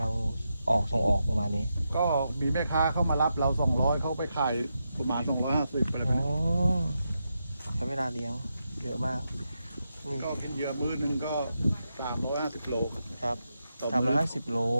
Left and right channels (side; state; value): both; inverted; correlation -0.86